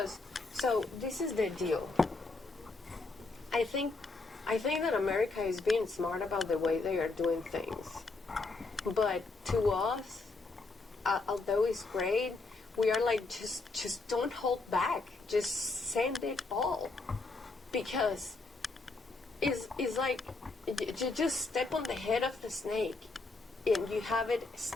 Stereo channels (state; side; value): quieter; right; 3.6 dB